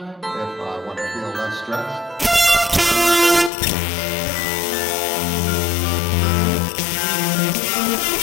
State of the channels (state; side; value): drops out; right; at 3.5 s